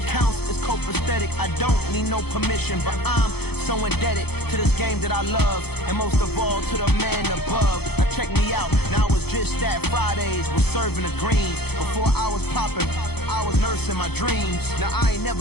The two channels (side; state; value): right; late; 0.97 ms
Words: is copacetic. I don't need no permission, but I'm so indebted to this game that I love, and most of all to the man above. Now check me out, now it's just that Fridays was serving the greens. Before I was popping, I was nursing my dreams. Now I ain't